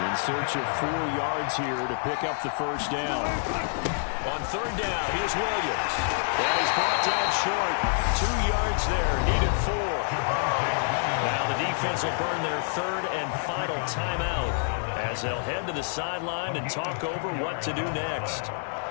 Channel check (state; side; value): silent; right; digital silence